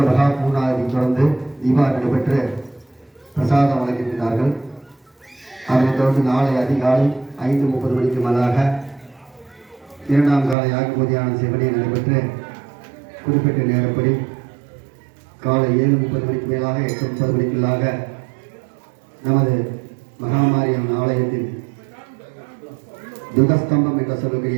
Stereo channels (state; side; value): drops out; left; at 10.6 s